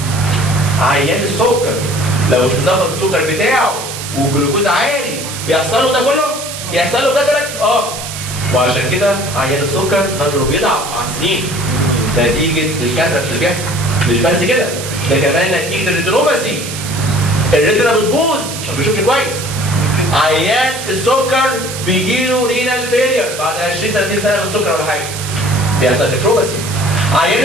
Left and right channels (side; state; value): right; noise; hiss, 8 dB below the sound